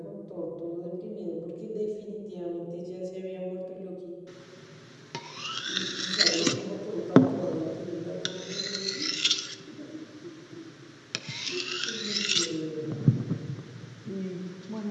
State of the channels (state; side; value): identical; both; correlation 1.00